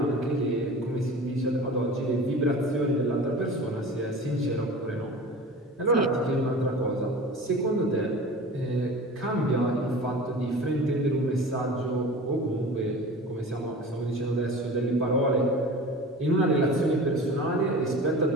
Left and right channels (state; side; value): normal; both; correlation 0.37